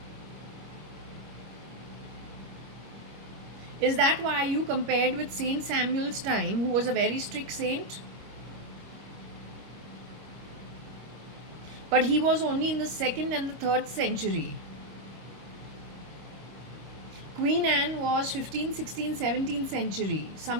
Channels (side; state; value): left; late; 26 ms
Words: Is that why you compared with Saint Samuel's time, who was a very strict saint? But he was only in the 2nd and the 3rd century. Queen Anne was 15th, 16th, 17th century,